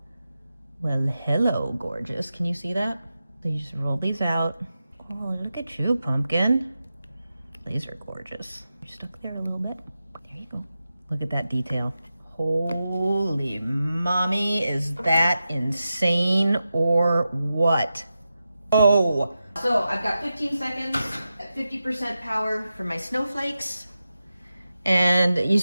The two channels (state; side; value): inverted; both; correlation -0.91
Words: Well, hello, gorgeous. Can you see that? So you just roll these out. Oh, look at you, pumpkin. These are gorgeous. You're stuck there a little bit. There you go. Look at that detail. Holy mommy, is that insane or what? Oh. So I've got 15 seconds at 50% power for my snowflakes. And you